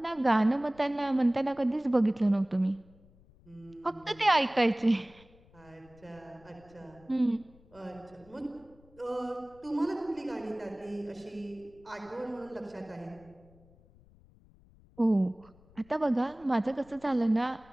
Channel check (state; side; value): noise; left; rumble, 27 dB below the sound